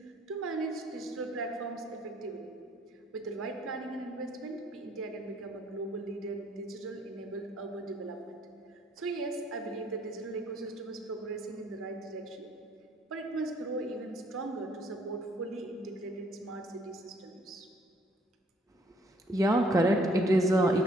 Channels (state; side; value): normal; both; correlation 0.63